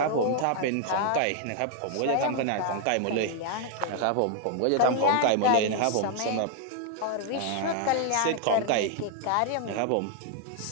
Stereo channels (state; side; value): different; both; correlation 0.00